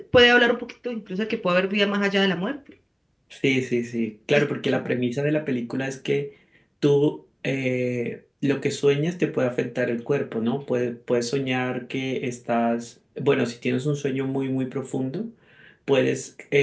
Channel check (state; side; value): identical; both; correlation 1.00